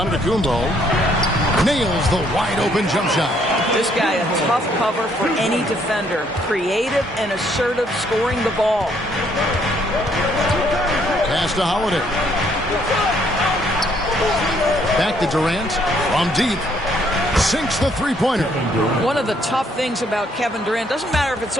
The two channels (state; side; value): normal; both; correlation 0.68